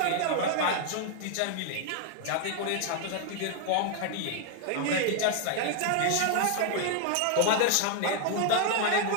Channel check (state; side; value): different; both; correlation 0.00